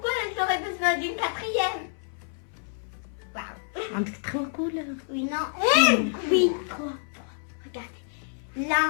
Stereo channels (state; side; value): silent; right; 59 dB below the other